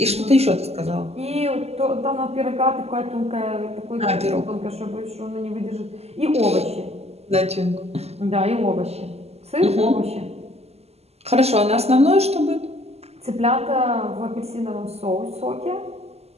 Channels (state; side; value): late; left; 0.30 ms